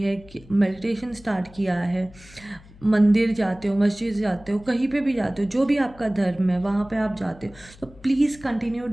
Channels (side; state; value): left; noise; hum, 23 dB below the sound